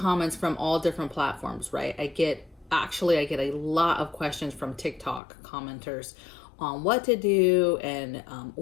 from all different platforms, right? I get a lot of questions from TikTok commenters on what to do and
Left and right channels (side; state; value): right; drops out; at 5.2 s